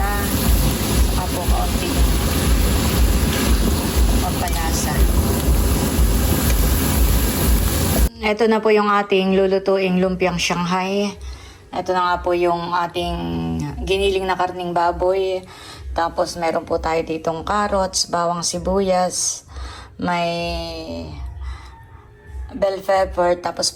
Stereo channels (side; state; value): both; identical; correlation 1.00